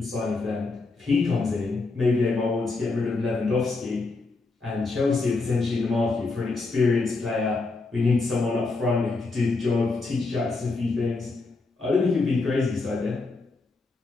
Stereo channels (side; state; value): right; quieter; 3.7 dB